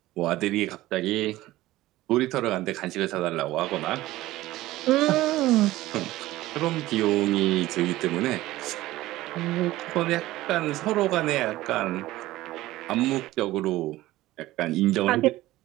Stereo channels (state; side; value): quieter; left; 16.9 dB